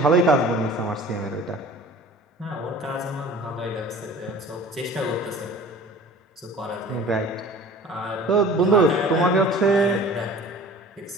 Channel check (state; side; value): normal; both; correlation 0.44